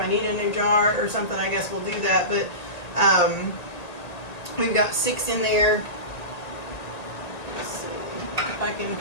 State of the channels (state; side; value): late; right; 1.8 ms